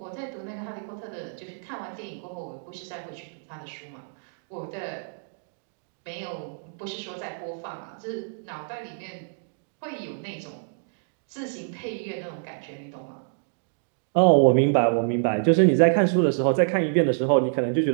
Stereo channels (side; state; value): left; silent; digital silence